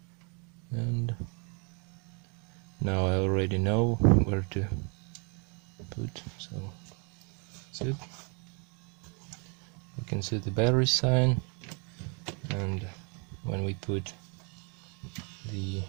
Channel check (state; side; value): quieter; left; 35.1 dB